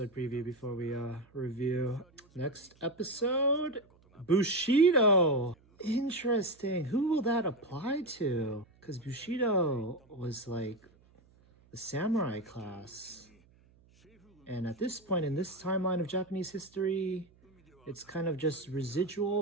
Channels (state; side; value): noise; right; hum, 30 dB below the sound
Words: preview before we review. Next episode, Bushido. Interesting. Who will that apply to? Because Bushido was like the samurai class. And at this point in this timeline of Japanese history, it's kind of just residual